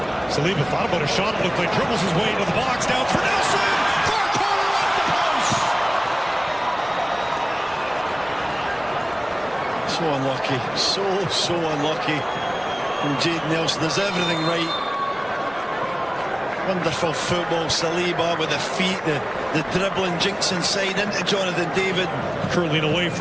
Saliba thought about a shot. It looked like dribbles his way into the box. Now it's for Nelson. Far corner off the post. So unlucky. So unlucky from Jayden Nelson. Does everything right. Wonderful football. Saliba with the feet, the dribbling, jinks inside into Jonathan David. Curling away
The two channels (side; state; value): left; noise; rumble, 27 dB below the sound